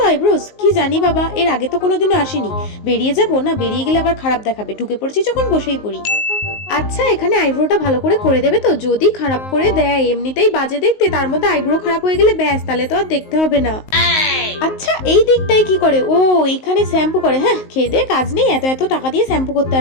আইব্রোস কি জানি বাবা, এর আগে তো কোনোদিনও আসিনি। বেরিয়ে যাবো না, বেরিয়ে গেলে আবার খারাপ দেখাবে, ঢুকে পড়ছি যখন বসেই পড়ি। আচ্ছা এখানে আইব্রোটা ভালো করে দেবে তো? যদি খারাপ করে দেয়, এমনিতেই বাজে দেখতে, তার মধ্যে আইব্রো খারাপ হয়ে গেলে ব্যাস, তাহলে তো আর দেখতে হবে না। আচ্ছা এই দিকটাই কি করে? ও এইখানে শ্যাম্পু করে। হ্যাঁ খেয়ে দে কাজ নেই, এত এত টাকা দিয়ে শ্যাম্পু করতে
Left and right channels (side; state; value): right; late; 19 ms